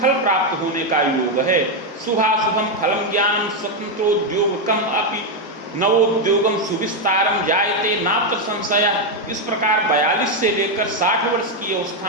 फल प्राप्त होने का योग है। शुभाशुभम फलम ज्ञानम स्वतंत्रोद्योगकम अपि नवोद्योगम सुविस्तारम जायते नात्र संशय। इस प्रकार 42 से लेकर 60 वर्ष की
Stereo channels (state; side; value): normal; both; correlation 0.04